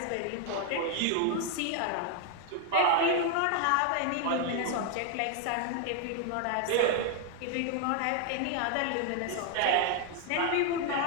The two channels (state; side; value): different; both; correlation 0.00